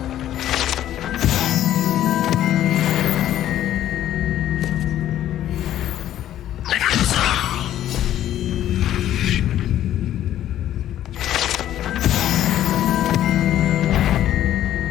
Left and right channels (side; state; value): right; quieter; 12.1 dB